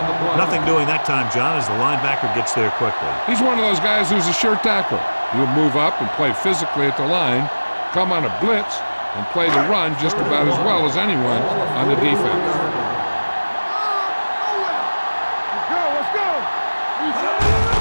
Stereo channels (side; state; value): both; inverted; correlation -1.00